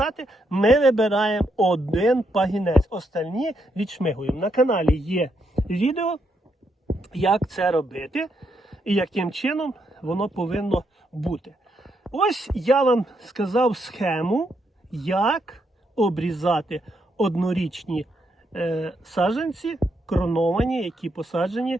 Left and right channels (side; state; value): both; normal; correlation 0.78